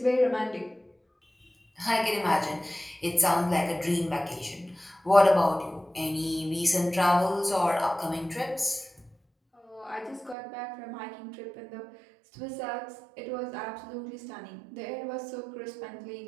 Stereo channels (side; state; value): left; drops out; at 10.4 s